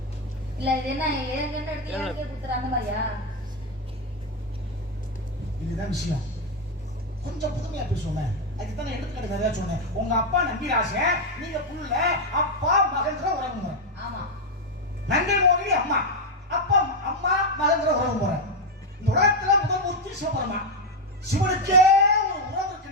இல்ல இது என்ன ஏற்கனவே எடுத்து எனக்கே குத்துற அந்த மாதிரியா? இதுதான் விஷயம். கொஞ்சம் புதுமையா பேசுவோமே. அதுக்கு தான் எடுத்துக்கிட்டு நிறைய சொன்னேன். உங்க அப்பா நம்பிராசன், நீங்க புள்ள, அப்பா மகன்ற உறவு முறை. ஆமா. நங்கை மோகினி அம்மா, அப்பா அம்மா மகன்ற உறவு முறை. இந்த உலகத்துல முதல் மூர்த்தி சிவபெருமா. சிவனுக்கே ஒரு உறவு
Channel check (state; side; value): normal; both; correlation 0.05